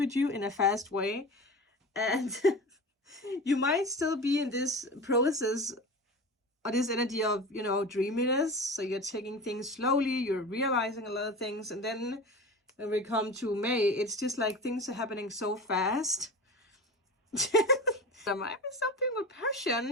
you in a fast way, and you might still be in this process or this energy of, you know, dreaminess. So you're taking things slowly, you're realizing a lot of things, and then when we come to May, it's just like things are happening so fast. There might be something with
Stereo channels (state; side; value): normal; both; correlation 0.31